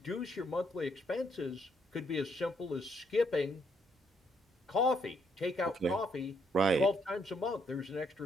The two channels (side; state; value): both; normal; correlation 0.72